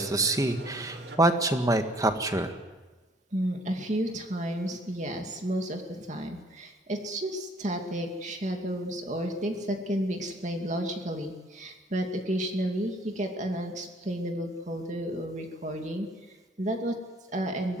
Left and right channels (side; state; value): both; normal; correlation 0.59